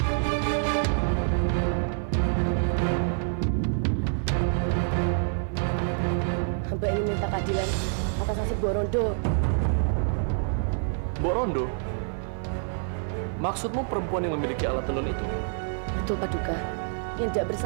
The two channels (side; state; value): left; silent; digital silence